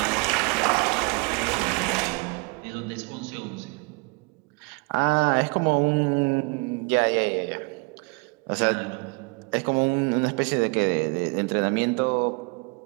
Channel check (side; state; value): left; quieter; 29.8 dB